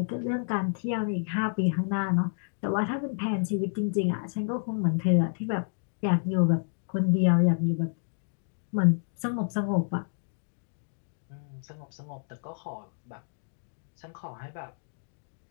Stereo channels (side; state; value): right; silent; digital silence